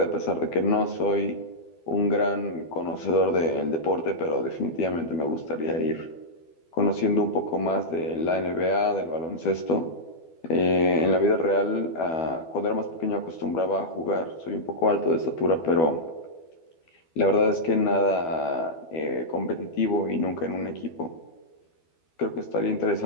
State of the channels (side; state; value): right; late; 12 ms